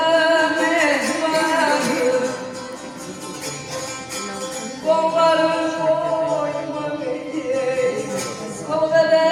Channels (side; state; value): both; identical; correlation 1.00